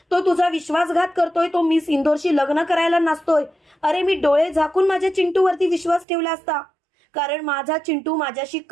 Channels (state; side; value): drops out; left; at 6.1 s